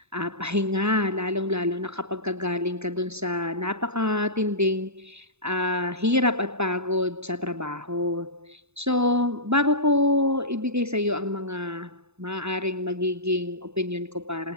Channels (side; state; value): left; late; 0.80 ms